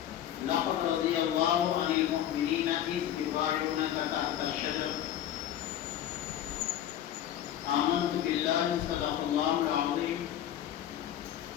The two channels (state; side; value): quieter; right; 11.1 dB